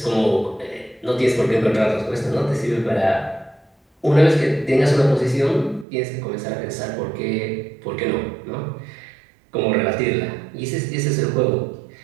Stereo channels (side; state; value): left; drops out; at 5.9 s